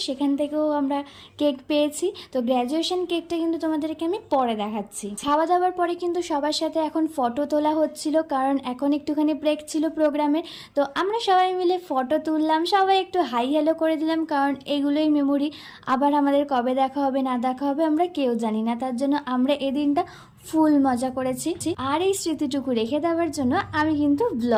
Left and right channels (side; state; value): both; identical; correlation 1.00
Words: সেখান থেকেও আমরা কেক পেয়েছি। তো গ্র্যাজুয়েশন কেকটা কিন্তু তোমাদেরকে আমি পরে দেখাচ্ছি। খাওয়া দাওয়ার পরে কিন্তু সবার সাথে এখন ফটো তোলা হচ্ছিল, কারণ এখন একটুখানি ব্রেক ছিল প্রোগ্রামের। তো আমরা সবাই মিলে ফটো তুললাম, সবাই একটু হাই হ্যালো করে দিলাম, কারণ এগুলোই মেমোরি। আবার আমাদের কবে দেখা হবে না দেখা হবে আমরা কেউ জানি না, তার জন্য আমরা এই দিনটা ফুল মজা করেছি। আর এই স্মৃতিটুকু রেখে দেওয়ার জন্য আমি কিন্তু